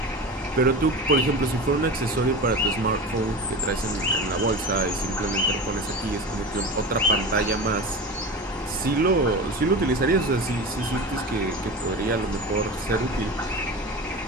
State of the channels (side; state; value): both; normal; correlation 0.29